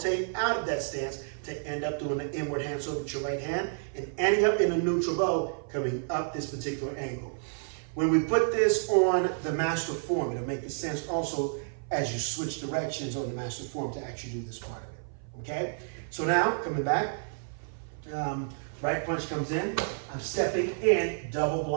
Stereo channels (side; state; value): left; silent; 55 dB below the other